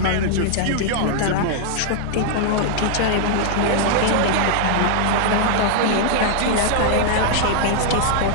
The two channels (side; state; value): both; different; correlation -0.01